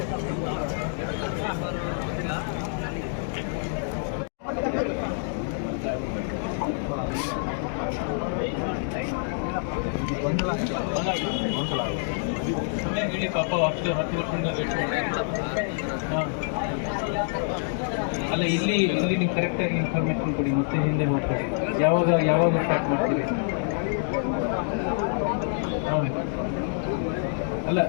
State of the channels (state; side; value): silent; right; digital silence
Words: ಅಲ್ಲ ಇಲ್ಲಿ ನೀವು ಕರೆಕ್ಟಾಗಿ ಇನ್ಫಾರ್ಮೇಷನ್ ಕೊಡಿ, ಮತ್ತೆ ಹಿಂದೆ ಮಾಡ್ಕೊಳ್ಳಿ. ಯಾವಾಗ ಸ್ಟಾರ್ಟ್ ಮಾಡ್ತೀರಿ? ಅಲ್ಲ,